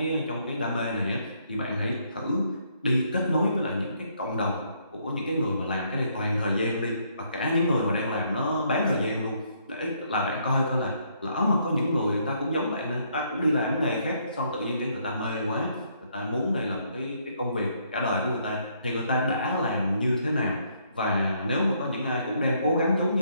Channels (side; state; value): both; inverted; correlation -0.70